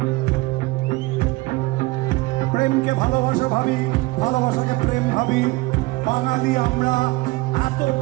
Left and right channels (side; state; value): left; quieter; 22.1 dB